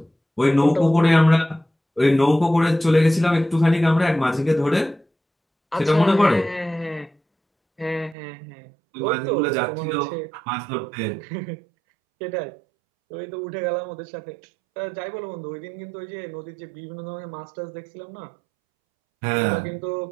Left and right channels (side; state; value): left; drops out; at 8.2 s